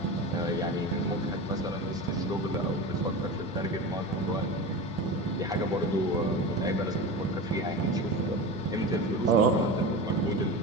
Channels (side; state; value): both; normal; correlation 0.28